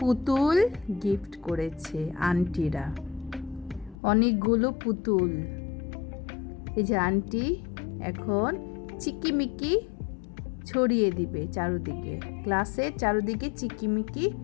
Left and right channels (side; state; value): right; drops out; at 4.0 s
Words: পুতুল গিফট করেছে আন্টিরা, অনেকগুলো পুতুল। এই যে আন্টি এখন চিকিমিকি ছড়িয়ে দিবে চারুদিকে, ক্লাসের চারুদিকে চিকিমিকি